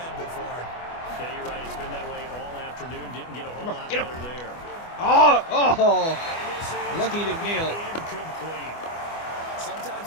for him. Yeah, you're right. It's been that way all afternoon. Didn't get a whole lot better there. Oh! Lucky he didn't nail it. Incomplete.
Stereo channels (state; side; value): late; right; 24 ms